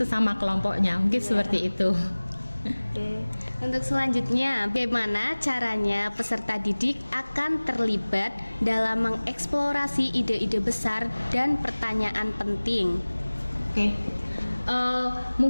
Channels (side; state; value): both; inverted; correlation -1.00